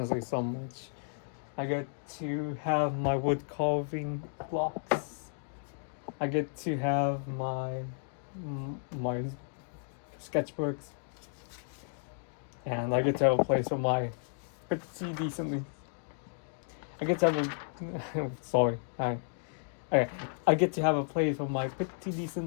so much. I get to have my wood carving blocks. I get to have my sketchbooks. And I get to have a place for my pretty decently. I get to have a sorry. Okay. I get to have a place for my pretty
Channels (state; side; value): silent; right; digital silence